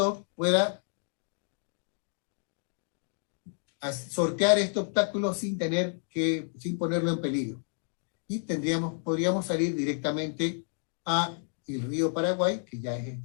pueda sortear este obstáculo sin ponerlo en peligro. Y podríamos salir directamente a el río Paraguay, que ya es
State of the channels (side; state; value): right; silent; 58 dB below the other